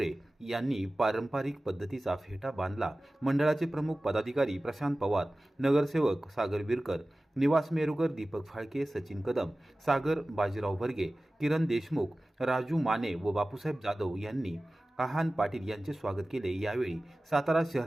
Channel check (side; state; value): both; normal; correlation 0.97